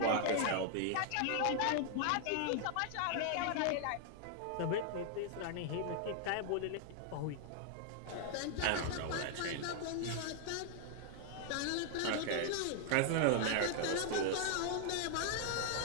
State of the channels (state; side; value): different; both; correlation 0.00